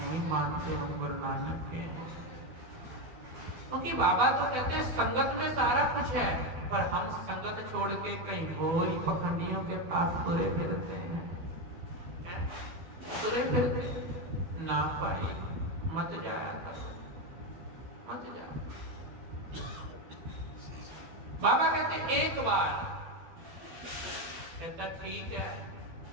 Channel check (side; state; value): left; late; 12 ms